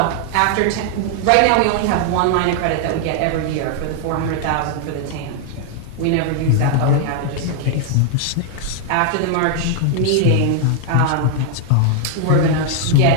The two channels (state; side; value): different; both; correlation 0.00